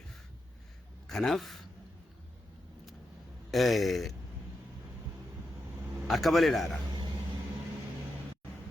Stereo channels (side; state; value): both; normal; correlation 0.86